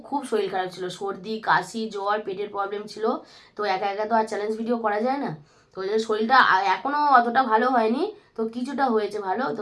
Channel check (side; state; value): both; identical; correlation 1.00